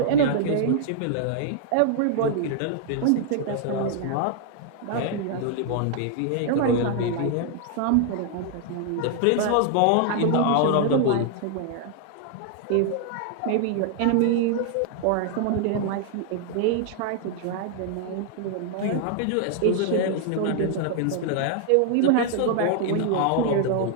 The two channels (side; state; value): both; different; correlation 0.00